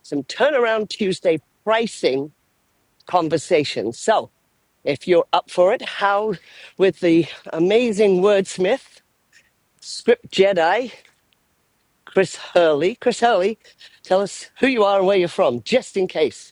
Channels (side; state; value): both; identical; correlation 1.00